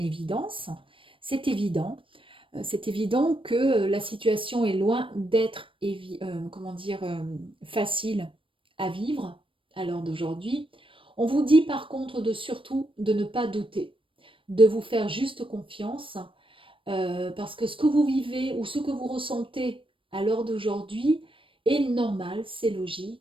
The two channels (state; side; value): late; left; 0.25 ms